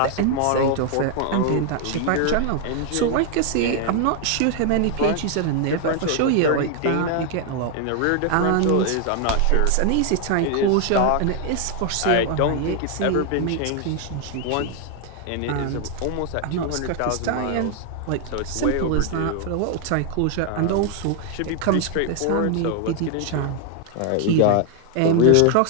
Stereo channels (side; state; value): both; different; correlation 0.00